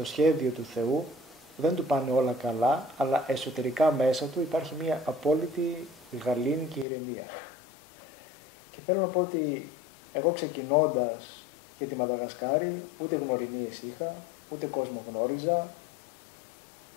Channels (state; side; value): drops out; right; at 6.9 s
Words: σχέδιο του Θεού, δεν του πάνε όλα καλά, αλλά εσωτερικά μέσα του υπάρχει μια απόλυτη γαλήνη και ηρεμία. Και θέλω να πω ότι εγώ ξεκινώντας για τη Μαδαγασκάρη, ούτε γνωριμίες είχα, ούτε κόσμο γνώριζα.